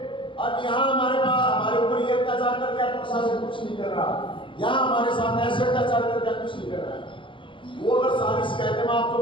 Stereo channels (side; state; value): right; late; 0.25 ms